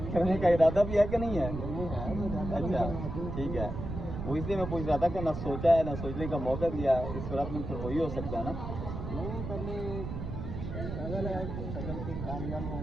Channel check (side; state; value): right; noise; rumble, 6 dB below the sound